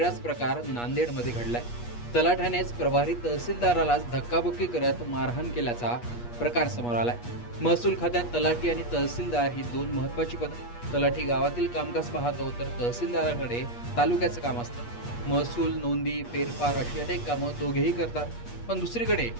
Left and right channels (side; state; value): right; late; 8.4 ms